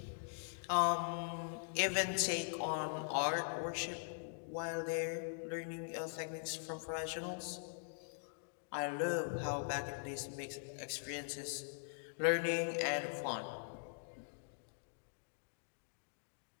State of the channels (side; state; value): right; silent; digital silence